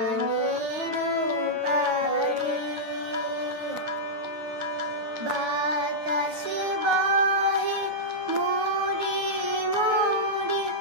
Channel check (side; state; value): left; late; 9.3 ms